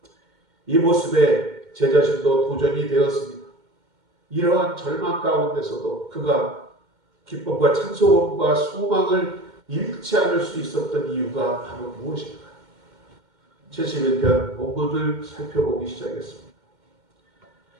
이 모습에 제 자신도 도전이 되었습니다. 이러한 절망 가운데서도 그가 기쁨과 찬송과 소망을 잃지 않을 수 있었던 이유가 바로 무엇인가? 71편 본문을 살펴보기 시작했습니다.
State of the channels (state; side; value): late; left; 2.1 ms